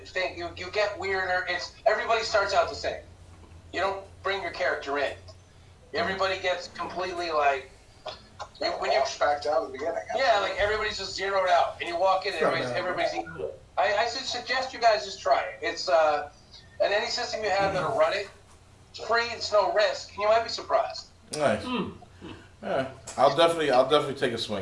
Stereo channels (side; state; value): both; identical; correlation 1.00